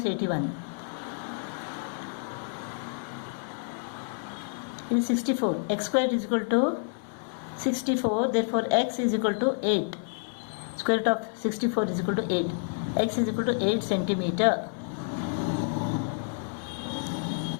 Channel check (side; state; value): right; silent; 58 dB below the other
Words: 81. It is 64. X square is equal to 64. Therefore, X is equal to 8. Square root of 64 is equal to 8. X is equal to 8 centimeter.